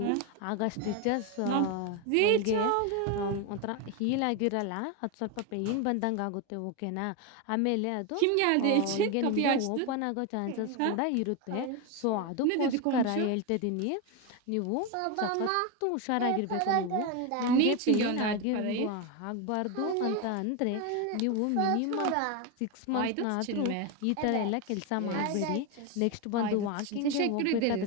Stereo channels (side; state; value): both; different; correlation 0.02